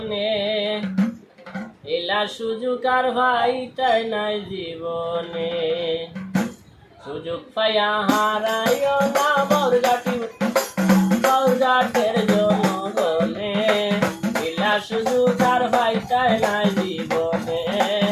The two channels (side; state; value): both; identical; correlation 1.00